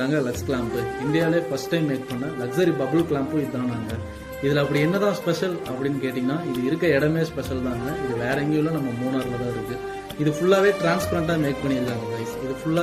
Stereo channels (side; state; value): both; identical; correlation 1.00